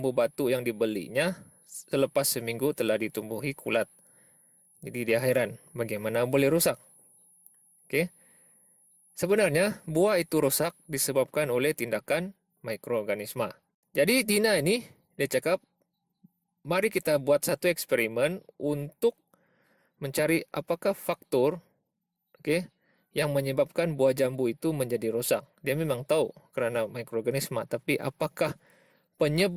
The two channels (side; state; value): both; identical; correlation 1.00